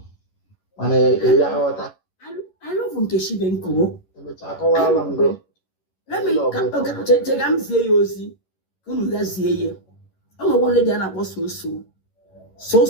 mana ya ghọta I love Nkechi Benko emecha akọwala ngo. Let me check am see you ozi unu ga zie ye o nwe lady na akpọ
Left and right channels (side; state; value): right; late; 11 ms